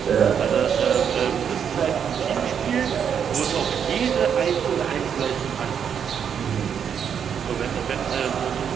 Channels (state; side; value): quieter; left; 7.8 dB